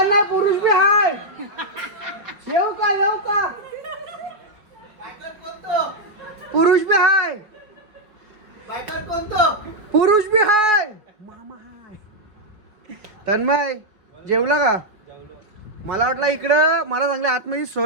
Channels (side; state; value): left; late; 4.9 ms